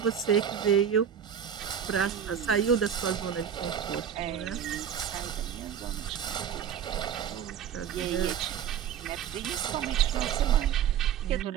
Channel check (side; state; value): left; quieter; 8.6 dB